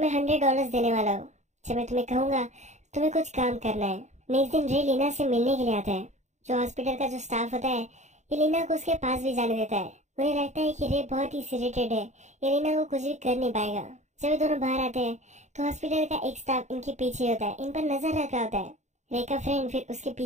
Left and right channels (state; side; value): late; left; 0.34 ms